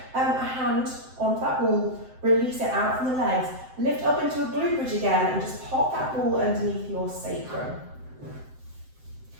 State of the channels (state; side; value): late; left; 7.7 ms